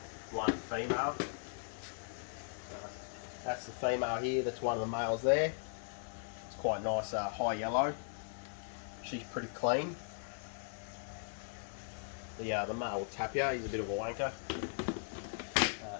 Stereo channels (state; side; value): silent; right; 52 dB below the other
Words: female. That's the female here, that's one of the males there. It's quite nice high yellow. She's pretty clean. The male will tap you, he's a bit of a wanker.